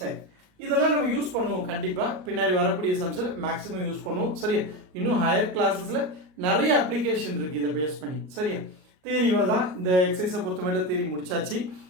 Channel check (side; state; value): left; late; 38 ms